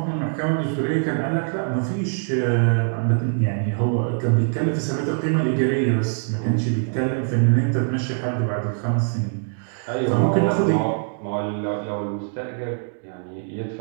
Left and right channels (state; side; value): silent; left; digital silence